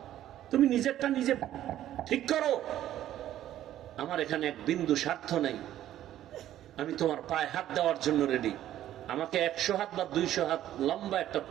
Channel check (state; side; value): quieter; left; 12.5 dB